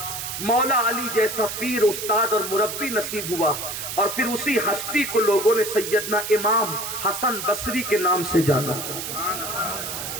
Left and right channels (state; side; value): noise; right; hiss, 6 dB below the sound